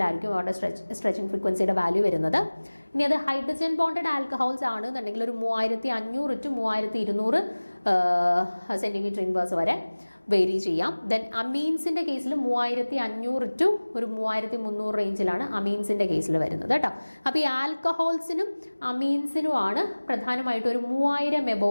അവരുടെ സ്ട്രെച്ചിങ് ഫ്രീക്വൻസിയുടെ വാല്യൂ വരുന്നത്. ഇനി അത് ഹൈഡ്രജൻ ബോണ്ടഡ് ആൽക്കഹോൾസ് ആണെന്നുണ്ടെങ്കിൽ ഒരു 3500 to 3200 സെൻറ്റിമീറ്റർ ഇൻവേഴ്സ് വരെ വേരി ചെയ്യാം. ദെൻ അമീൻസിൻ്റെ കേസിൽ 3500 to ഒരു 3300 റേഞ്ചിലാണ് അമീൻസിൻ്റെ കേസിൽ വരുന്നത് കേട്ടോ. അപ്പോൾ ഈ ആൽക്കഹോൾസിനും അമീൻസിനുമാണ് പ്രധാനമായിട്ടും ഒരു 3000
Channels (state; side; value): inverted; both; correlation -1.00